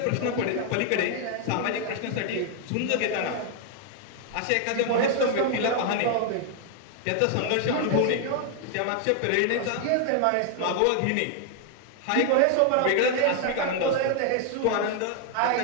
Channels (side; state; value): both; different; correlation 0.00